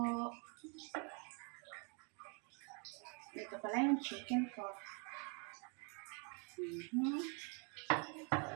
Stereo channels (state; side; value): quieter; left; 34.9 dB